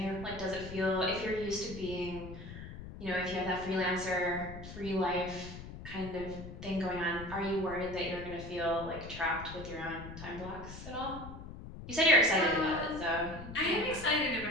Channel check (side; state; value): left; noise; rumble, 12 dB below the sound